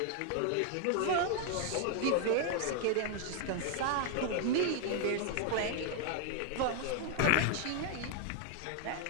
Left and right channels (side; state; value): both; different; correlation 0.00